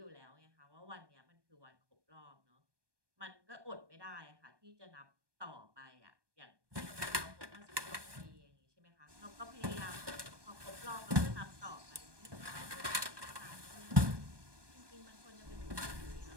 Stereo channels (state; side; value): late; left; 1.2 ms